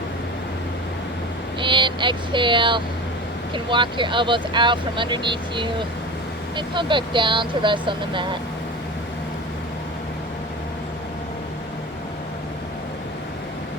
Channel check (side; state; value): both; normal; correlation 0.32